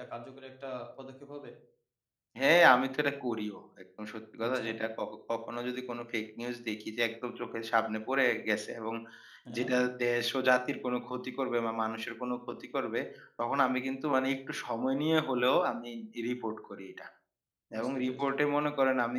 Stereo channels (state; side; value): identical; both; correlation 1.00